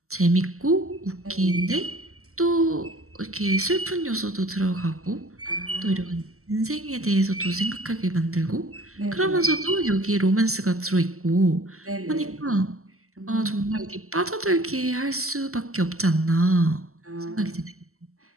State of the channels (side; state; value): left; late; 0.63 ms